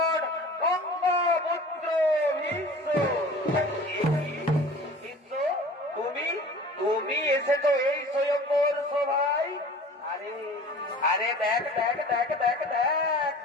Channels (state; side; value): normal; both; correlation 0.43